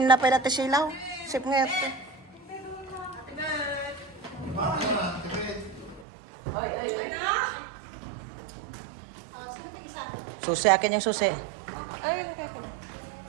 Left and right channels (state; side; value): drops out; left; at 6.1 s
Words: na pala ti silaw. Sip nga ito. Susi akin yung susi.